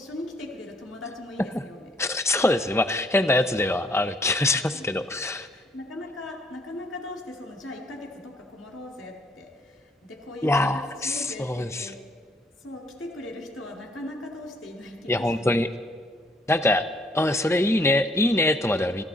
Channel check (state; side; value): normal; both; correlation 0.65